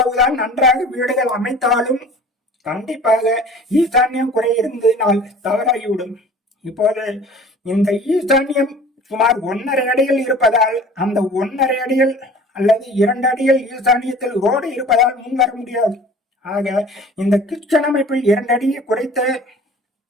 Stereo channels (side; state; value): both; normal; correlation 0.45